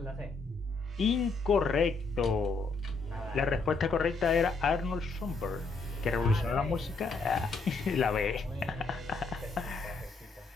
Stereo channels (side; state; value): right; quieter; 4.0 dB